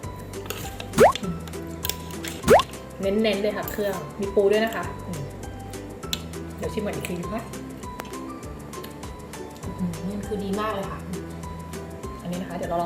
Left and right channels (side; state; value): both; identical; correlation 1.00